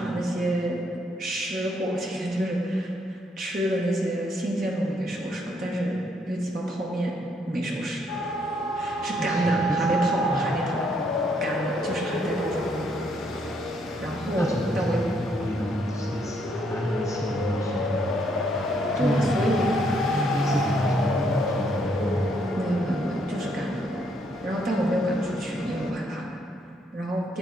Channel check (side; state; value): both; normal; correlation 0.71